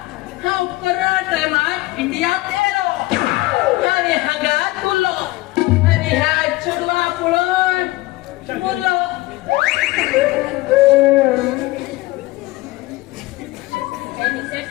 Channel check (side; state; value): right; quieter; 19.8 dB